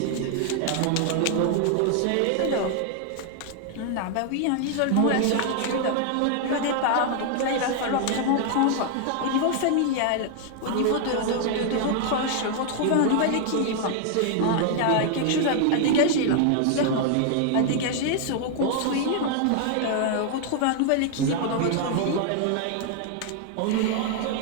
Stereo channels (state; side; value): different; both; correlation 0.00